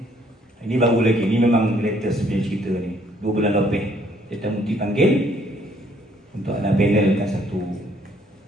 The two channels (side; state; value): both; normal; correlation 0.65